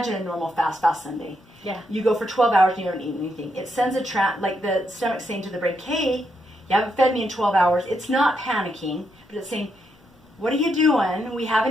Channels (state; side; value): normal; both; correlation 0.80